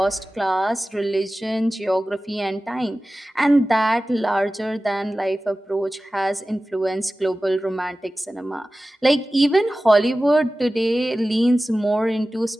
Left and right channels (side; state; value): both; normal; correlation 0.96